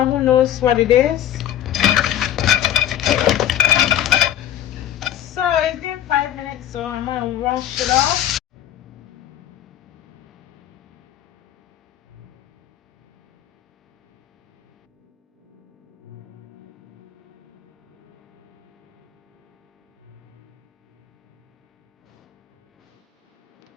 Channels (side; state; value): right; quieter; 11.3 dB